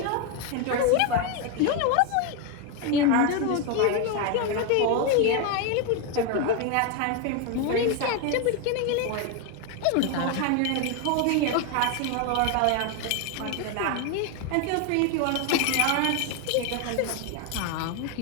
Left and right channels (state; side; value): different; both; correlation 0.02